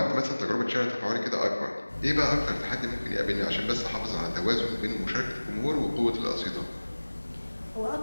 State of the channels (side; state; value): both; inverted; correlation -1.00